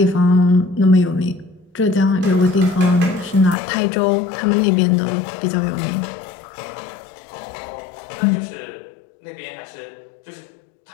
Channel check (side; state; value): right; drops out; at 3.6 s